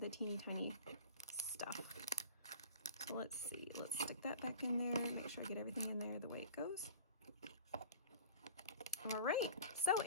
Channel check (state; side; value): inverted; both; correlation -0.40